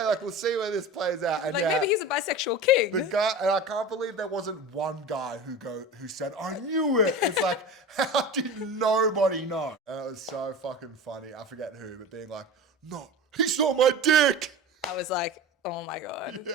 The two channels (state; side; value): normal; both; correlation 0.32